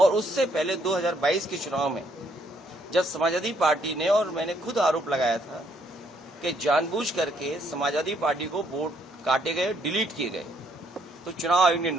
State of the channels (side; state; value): both; normal; correlation 0.69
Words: उससे पहले 2022 के चुनाव में जब समाजवादी पार्टी ने, और मैंने खुद आरोप लगाया था कि जानबूझ करके समाजवादी पार्टी को वोट काटे गए, डिलीट किए गए, तो चुनाव आयोग ने